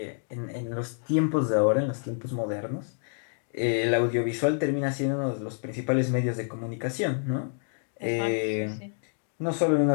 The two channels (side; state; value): right; silent; digital silence